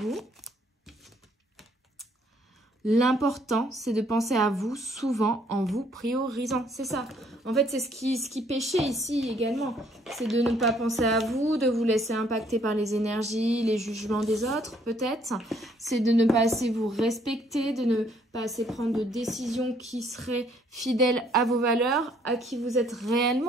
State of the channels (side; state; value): both; normal; correlation 0.65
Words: l'important, c'est de penser à vous souvent en vous priorisant. C'est ça. En fait, c'est ce qui pêchait ici également. C'est de ne pas penser à vous, de vous laisser impacter par les énergies, les jugements des autres, peut-être. C'est de ne pas assez vous respecter, de ne pas assez prendre de décisions qui seraient fidèles à vos valeurs, à qui vous êtes